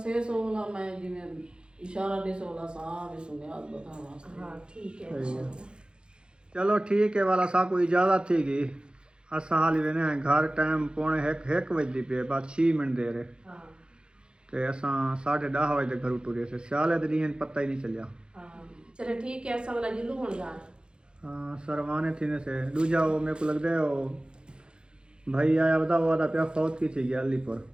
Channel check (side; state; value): left; late; 0.051 ms